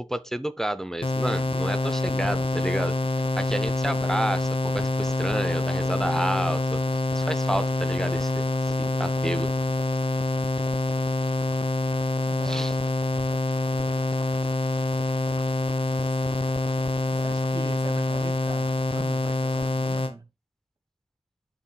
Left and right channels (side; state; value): both; normal; correlation 0.87